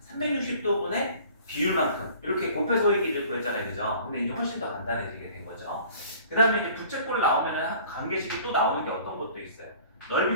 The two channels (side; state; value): both; inverted; correlation -0.49